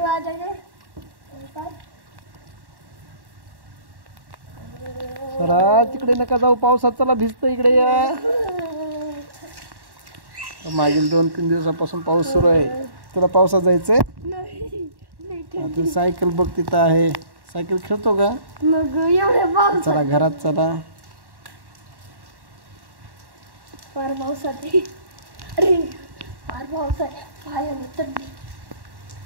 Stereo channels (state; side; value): late; left; 1.1 ms